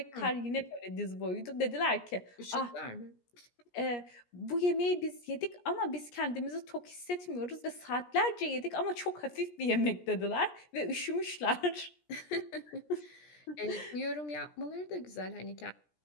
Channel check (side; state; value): right; late; 17 ms